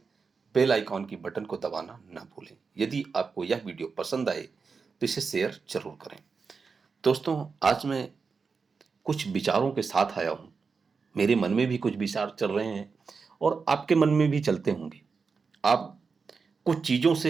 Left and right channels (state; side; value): quieter; left; 5.1 dB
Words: बेल आइकॉन की बटन को दबाना ना भूलें। यदि आपको यह वीडियो पसंद आए तो इसे शेयर जरूर करें। दोस्तों, आज मैं कुछ विचारों के साथ आया हूँ। मेरे मन में भी कुछ विचार चल रहे हैं और आपके मन में भी चलते होंगे। आप कुछ चीज़ों